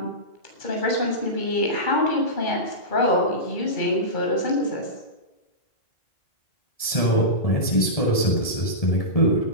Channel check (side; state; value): right; late; 1.7 ms